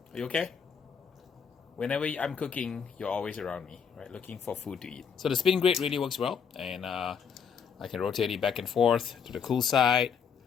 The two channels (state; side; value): quieter; right; 7.0 dB